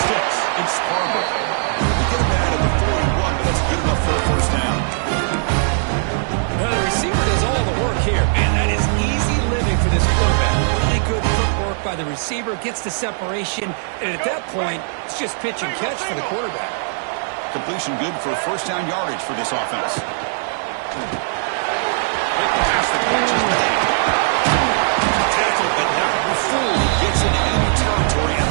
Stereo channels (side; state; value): left; silent; 66 dB below the other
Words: It's Harbaugh. They get him out of the 41, but that's good enough for a first down. Now the receiver does all the work here. Man, that is easy living for this quarterback. Really good footwork by the receiver. Gets the separation. And at that point, it's just pitch and catch for the quarterback. Completion good for first down yardage for this offense. Pass the catch is made. Tackle, but not before he gets into enemy territory at